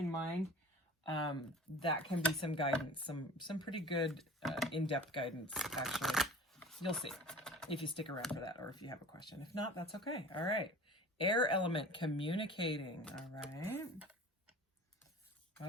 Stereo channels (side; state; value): both; normal; correlation 0.41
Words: mind, that can be some guidance, some pretty good in-depth guidance, actually. You'll see if you stick around for that or if you have a question. If not, that's okay. All right. Air element, communicating. All right.